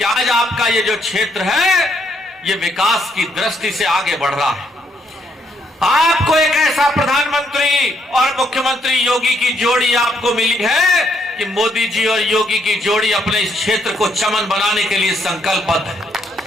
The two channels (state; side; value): normal; both; correlation 0.72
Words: आज आपका ये जो क्षेत्र है, ये विकास की दृष्टि से आगे बढ़ रहा है। आपको एक ऐसा प्रधानमंत्री और मुख्यमंत्री योगी की जोड़ी आपको मिली है कि मोदी जी और योगी की जोड़ी अपने इस क्षेत्र को चमन बनाने के लिए संकल्पबद्ध है।